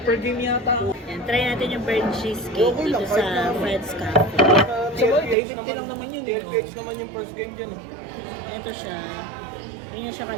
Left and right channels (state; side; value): drops out; left; at 5.4 s